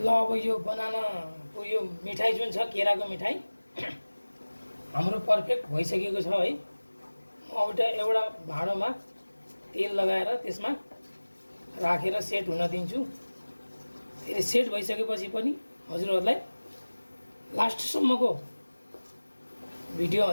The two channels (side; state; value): both; inverted; correlation -1.00